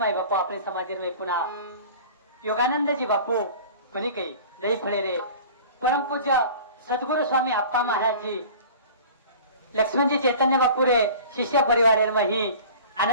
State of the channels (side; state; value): both; inverted; correlation -0.42